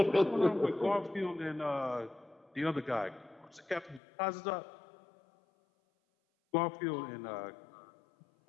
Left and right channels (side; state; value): right; drops out; at 4.0 s